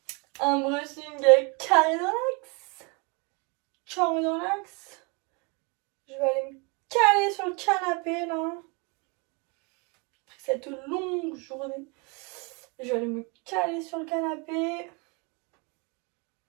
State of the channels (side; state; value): left; quieter; 30.8 dB